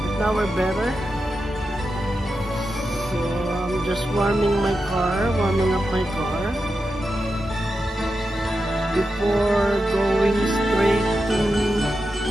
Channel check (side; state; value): both; normal; correlation 0.89